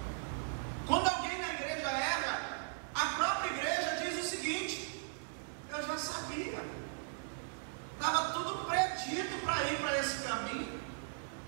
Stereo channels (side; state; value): left; silent; digital silence